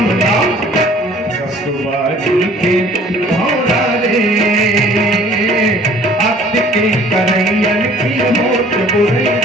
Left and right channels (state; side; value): normal; both; correlation 0.53